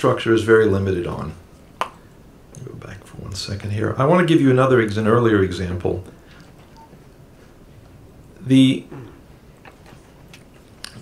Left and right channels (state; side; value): identical; both; correlation 1.00